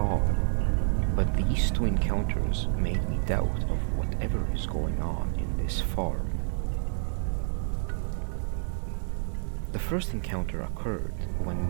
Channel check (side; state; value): left; silent; digital silence